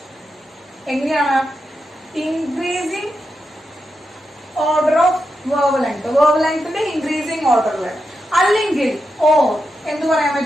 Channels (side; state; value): both; normal; correlation 0.87